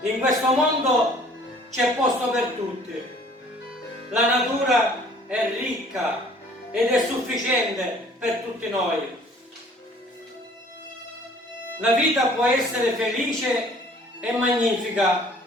In questo mondo c'è posto per tutti. La natura è ricca ed è sufficiente per tutti noi. La vita può essere felice e magnifica,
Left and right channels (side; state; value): both; normal; correlation 0.54